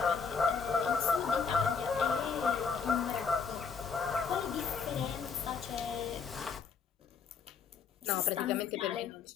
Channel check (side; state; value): right; quieter; 5.7 dB